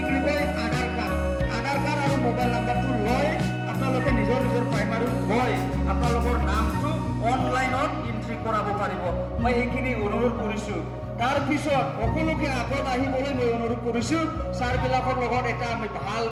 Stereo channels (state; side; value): identical; both; correlation 1.00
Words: বুলি কয় আধাৰ কাৰ্ড আৰু মোবাইল নাম্বাৰটো লৈ আপোনালোকে নিজৰ নিজৰ প্ৰাইমাৰীত গৈ আপোনালোকৰ নামটো অনলাইনত এণ্ট্ৰি কৰাব পাৰিব মই এইখিনি অনুৰোধ কৰিছোঁ তাৰপিছত সকলোকে আগত আহিবলৈ মই অনুৰোধ কৰিছোঁ ছাৰবিলাকৰ লগত এটা আমি